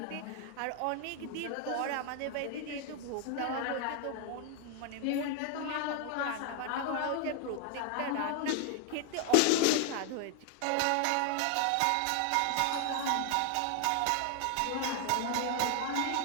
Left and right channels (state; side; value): different; both; correlation 0.00